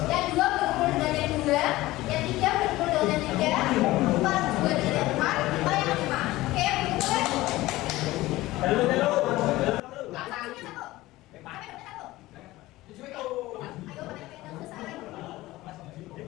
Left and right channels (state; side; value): quieter; right; 18.0 dB